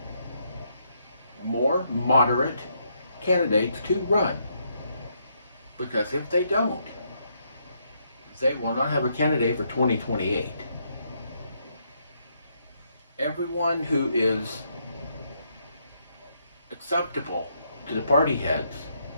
more moderate candidates to run. Because if they don't, they will not have a candidate for 2028. Everyone who is acceptable to the party heads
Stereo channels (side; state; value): both; inverted; correlation -0.75